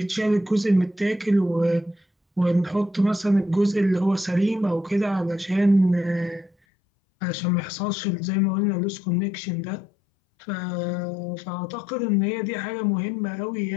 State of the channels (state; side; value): drops out; right; at 6.5 s